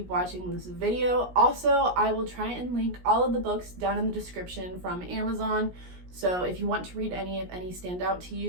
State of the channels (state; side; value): late; left; 17 ms